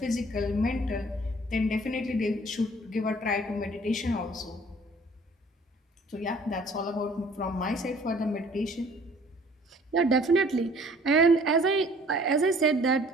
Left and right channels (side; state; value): both; normal; correlation 0.54